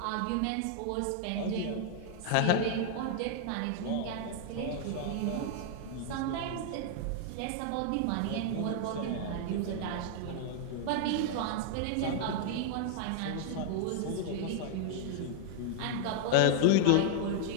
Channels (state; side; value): different; both; correlation 0.00